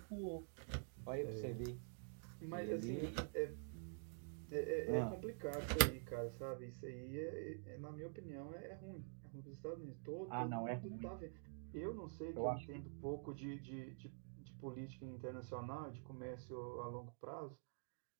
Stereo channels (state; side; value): silent; left; digital silence